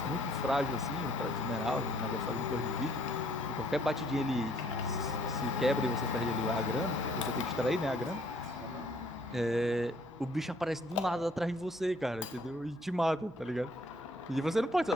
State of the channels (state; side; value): normal; both; correlation 0.63